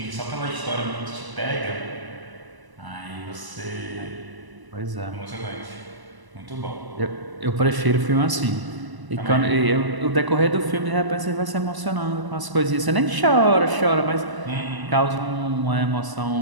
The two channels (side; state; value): left; late; 1.0 ms